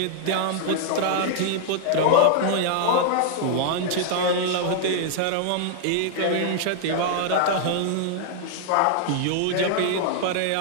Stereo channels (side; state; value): both; different; correlation -0.01